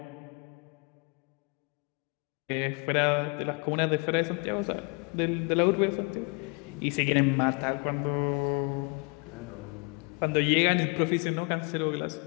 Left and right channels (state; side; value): quieter; right; 33.2 dB